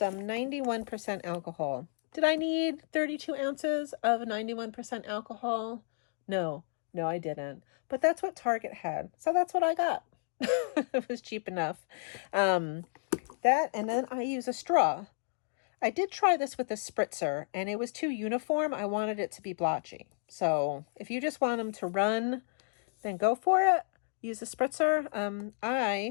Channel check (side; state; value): right; silent; digital silence